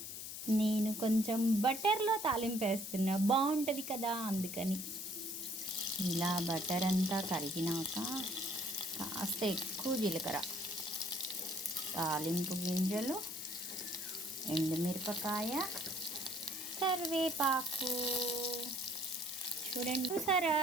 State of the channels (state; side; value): noise; left; hiss, 7 dB below the sound